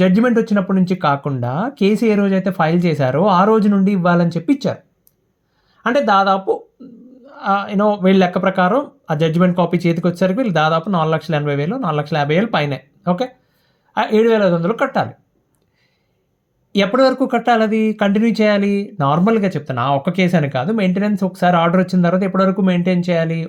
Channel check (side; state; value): both; identical; correlation 1.00